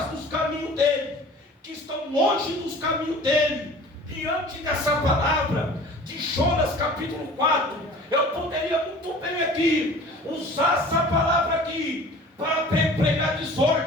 dos caminhos dele, que estão longe dos caminhos dele. Diante dessa palavra de Jonas capítulo 4, eu poderia muito bem aqui usar essa palavra aqui para pregar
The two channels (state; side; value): normal; both; correlation 0.44